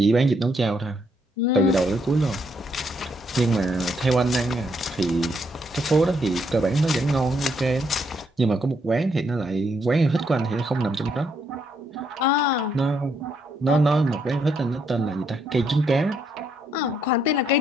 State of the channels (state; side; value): normal; both; correlation 0.74